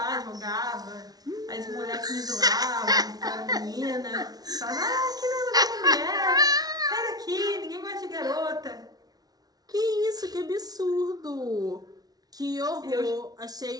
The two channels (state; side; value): late; left; 0.19 ms